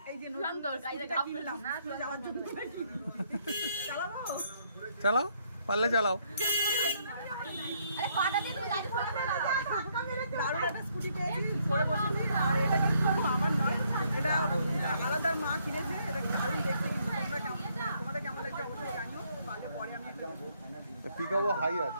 চালাও, পারলে চালাও।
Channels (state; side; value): inverted; both; correlation -0.70